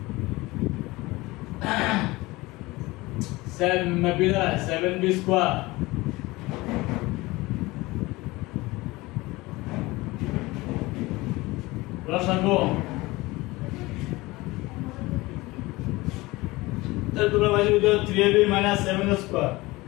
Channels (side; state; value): right; quieter; 21.1 dB